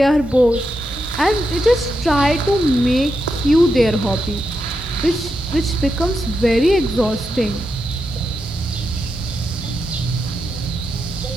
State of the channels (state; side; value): normal; both; correlation 0.85